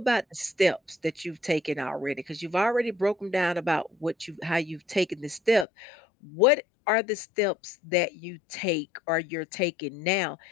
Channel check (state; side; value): drops out; right; at 5.7 s